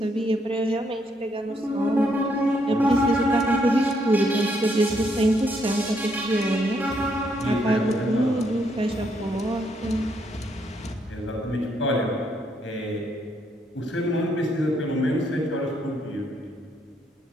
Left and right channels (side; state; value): both; normal; correlation 0.74